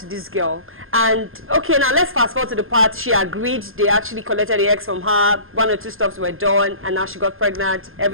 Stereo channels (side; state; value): left; late; 0.60 ms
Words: this girl. And okay, now let's fast forward to the part she agreed. They actually collected the eggs from her. 1 or 2 stops were done, and now she got pregnant.